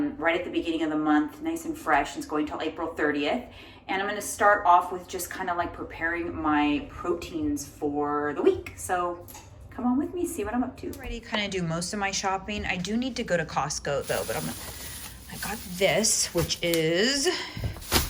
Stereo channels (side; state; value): both; identical; correlation 1.00